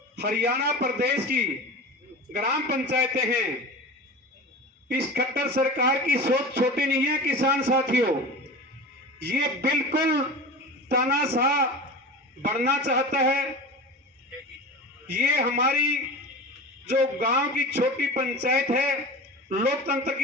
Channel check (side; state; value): both; normal; correlation 0.32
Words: हरियाणा प्रदेश की ग्राम पंचायतें हैं, इस खट्टर सरकार की सोच छोटी नहीं है किसान साथियों। ये बिल्कुल तानाशाह बढ़ना चाहता है। ये हमारी जो गांव की छोटी पंचायत है, लोकतंत्र